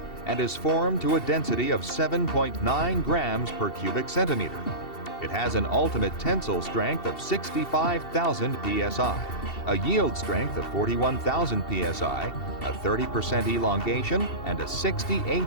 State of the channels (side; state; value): right; late; 2.7 ms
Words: and is formed to a density of 7.9 grams per cubic centimeter. It has an ultimate tensile strength of 65,000 psi, a yield strength of 41,000 psi, a 30% elongation, and a 60